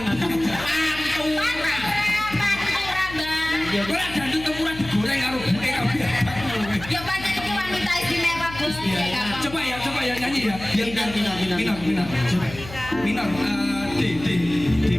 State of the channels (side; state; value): left; noise; hum, 14 dB below the sound